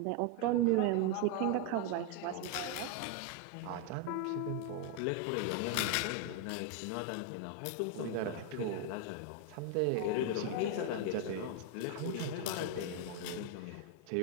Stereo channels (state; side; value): different; both; correlation 0.01